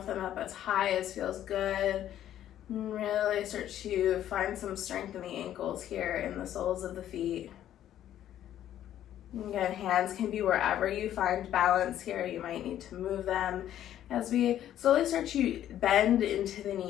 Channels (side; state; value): right; quieter; 11.6 dB